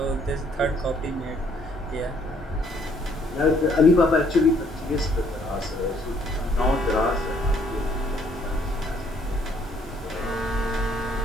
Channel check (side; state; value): both; normal; correlation 0.65